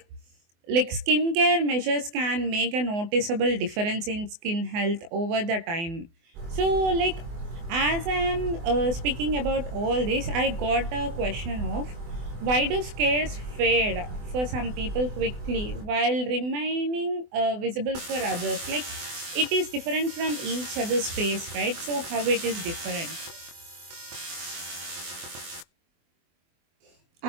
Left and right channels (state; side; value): late; left; 24 ms